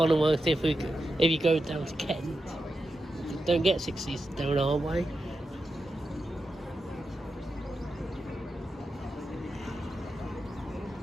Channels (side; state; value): both; normal; correlation 0.88